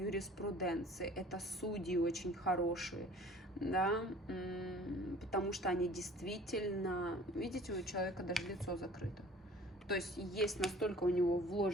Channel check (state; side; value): normal; both; correlation 0.48